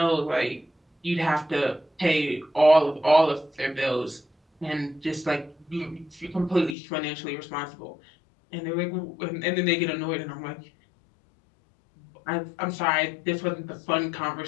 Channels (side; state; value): right; drops out; at 6.8 s